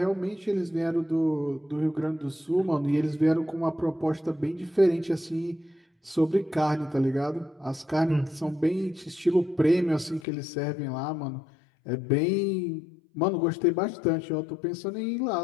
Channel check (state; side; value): drops out; right; at 10.2 s